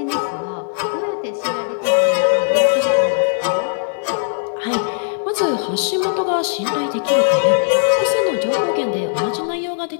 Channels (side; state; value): right; silent; digital silence